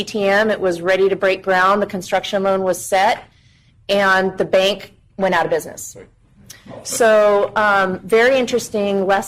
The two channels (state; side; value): identical; both; correlation 1.00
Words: It was ready to break ground. The construction loan was set, and the bank went out of business. So very interesting